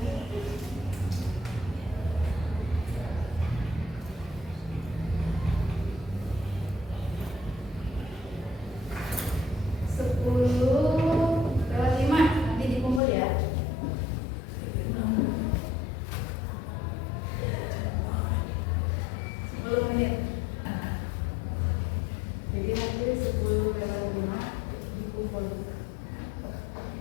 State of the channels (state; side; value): drops out; right; at 13.0 s